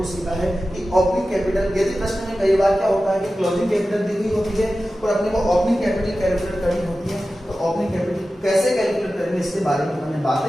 सीखा है कि ओपनिंग कैपिटल, यदि प्रश्न में कई बार क्या होता है कि क्लोजिंग कैपिटल दी हुई होती है और अपने को ओपनिंग कैपिटल कैलकुलेट करनी होती है, तो ओपनिंग कैपिटल कैसे कैलकुलेट करेंगे इसके बारे में हमने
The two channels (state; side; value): normal; both; correlation 0.94